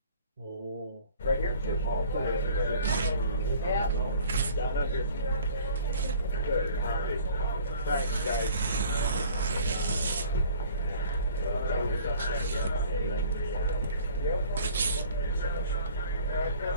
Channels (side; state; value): both; inverted; correlation -0.49